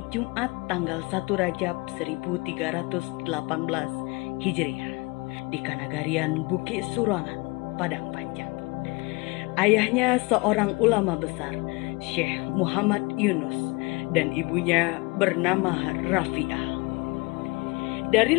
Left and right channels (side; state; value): right; quieter; 26.5 dB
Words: Jumat tanggal 1 Rajab 1318 Hijriah di Kanagarian Bukit Surangan, Padang Panjang. Ayahnya seorang ulama besar, Syekh Muhammad Yunus, dan ibunya bernama Rafi'ah.